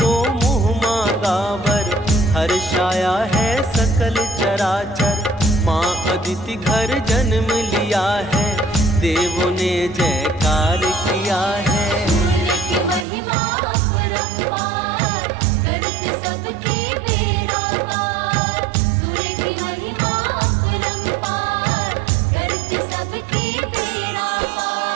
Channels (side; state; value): left; drops out; at 13.1 s